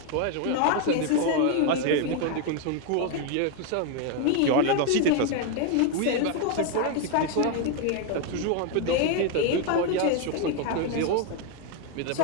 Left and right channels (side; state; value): both; different; correlation 0.01